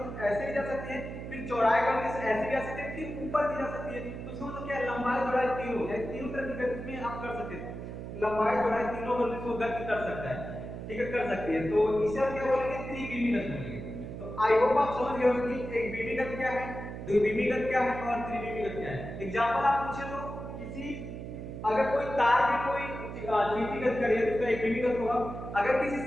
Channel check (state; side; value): noise; right; hum, 8 dB below the sound